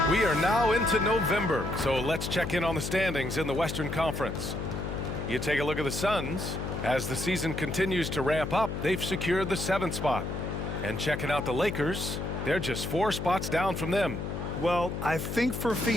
We are now into November, so let's check in on the standings in the Western Conference. You take a look at the Suns. As the season continues to ramp up, they've secured the 7th spot. And checking out the Lakers, they're just 4 spots down from them. Well, I think for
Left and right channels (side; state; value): left; noise; hum, 4 dB below the sound